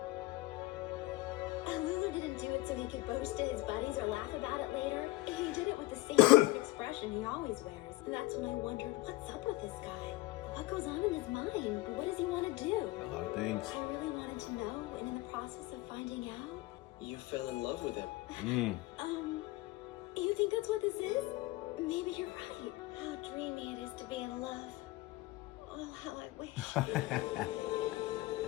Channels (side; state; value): right; quieter; 19.1 dB